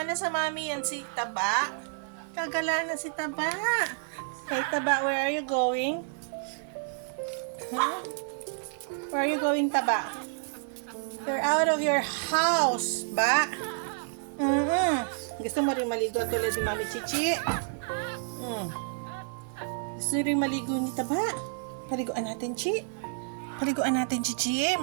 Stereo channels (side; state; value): left; silent; 58 dB below the other